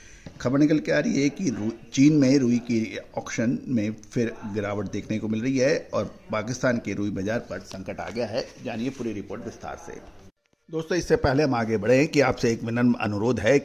खबर निकल के आ रही है कि चीन में रुई की ऑक्शन में फिर गिरावट देखने को मिल रही है और पाकिस्तान के रुई बाजार पर संकट आ गया है। जानिए पूरी रिपोर्ट विस्तार से। दोस्तों इससे पहले हम आगे बढ़े कि आपसे एक विनम्र अनुरोध है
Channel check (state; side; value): identical; both; correlation 1.00